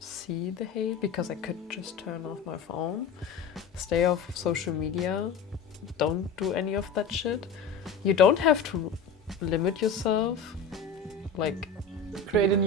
the hate because I could just turn off my phone, stay off social media, don't do any of that shit. You don't have to limit yourself, like Create a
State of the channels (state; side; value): quieter; right; 5.2 dB